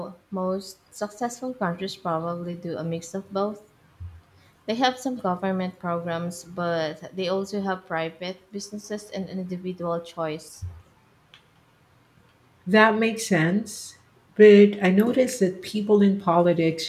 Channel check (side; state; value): both; identical; correlation 1.00